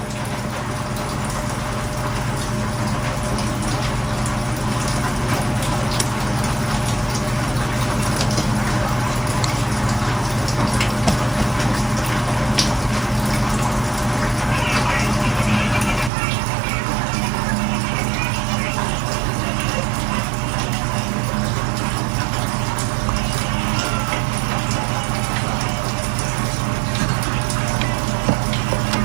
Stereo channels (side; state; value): left; drops out; at 16.1 s